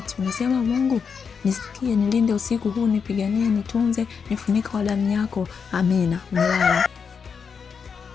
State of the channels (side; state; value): right; quieter; 6.1 dB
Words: unasema Mungu nisikie, nilinde usiku huu, nipiganie, nitunze, nifunike kwa damu yako, amina, umelala.